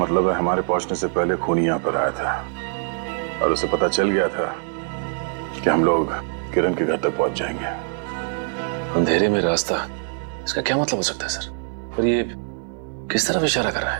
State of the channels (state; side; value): silent; left; digital silence